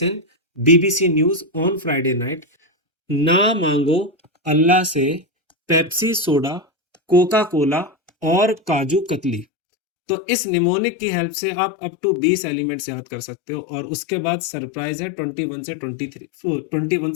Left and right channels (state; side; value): drops out; right; at 9.5 s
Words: BBC news on Friday night. ना मांगो अल्लाह से पेप्सी सोडा, कोका कोला और काजू कतली। तो इस निमोनिक की हेल्प से आप अप टू 20 एलिमेंट्स याद कर सकते हो, और उसके बाद सरप्राइज है 21 से 23, 21